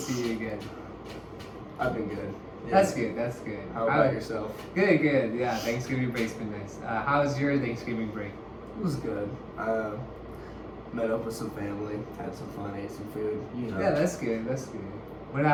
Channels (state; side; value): identical; both; correlation 1.00